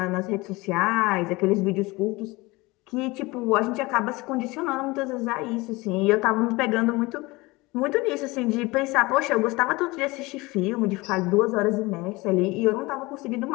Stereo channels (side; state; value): right; quieter; 22.5 dB